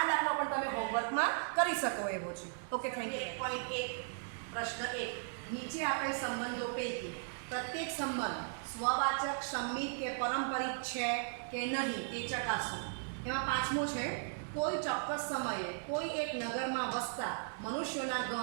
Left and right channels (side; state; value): left; silent; digital silence